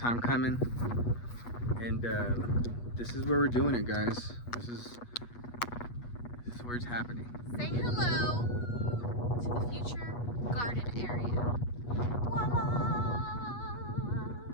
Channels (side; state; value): right; late; 8.3 ms